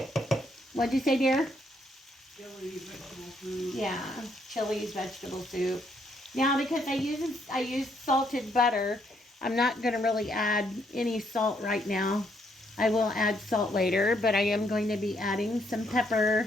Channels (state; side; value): normal; both; correlation 0.72